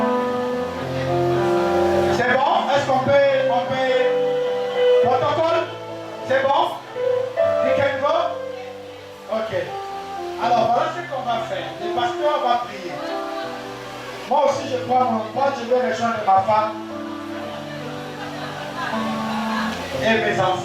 C'est bon? Est-ce qu'on peut protocole? C'est bon? You can go? Ok. Alors voilà ce qu'on va faire. Le pasteur va prier. Moi aussi je prends mon poids, je vais rejoindre ma femme et mes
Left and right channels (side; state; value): both; identical; correlation 1.00